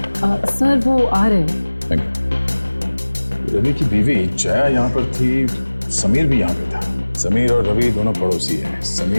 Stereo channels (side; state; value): both; inverted; correlation -1.00